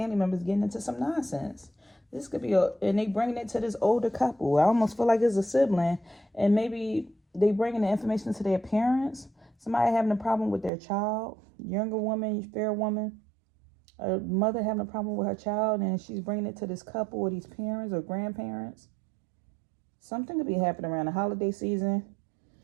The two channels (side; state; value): left; drops out; at 10.7 s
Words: members getting into some nonsense. This could be and they bringing it to this older couple. I almost feel like it's a sibling. And maybe they bringing the information to their parents. Somebody having a problem with their child. Younger woman, fair woman. A mother having a problem with her child. And she's bringing it to this couple or these parents or grandparents. Something could be happening around the holiday season.